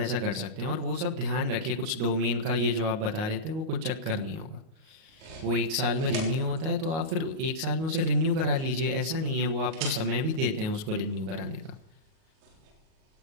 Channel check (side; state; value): left; late; 38 ms